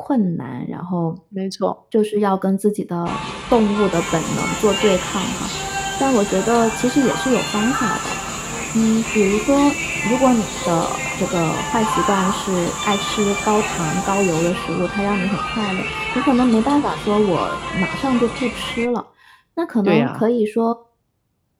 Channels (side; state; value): both; identical; correlation 1.00